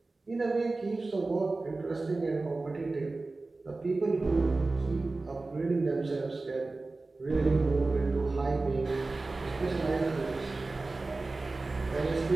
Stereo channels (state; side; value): quieter; left; 3.4 dB